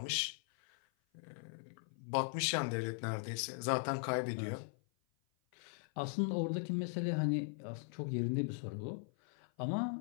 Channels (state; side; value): silent; right; 52 dB below the other